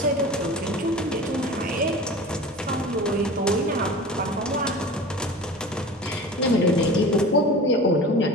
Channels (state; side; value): normal; both; correlation 0.36